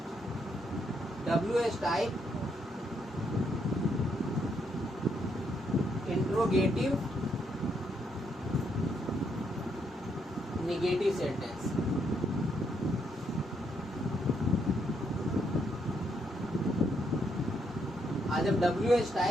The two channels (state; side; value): normal; both; correlation 0.75